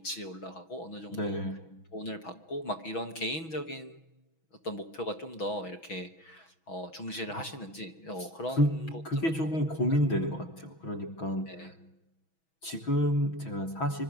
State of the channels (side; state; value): right; late; 6.2 ms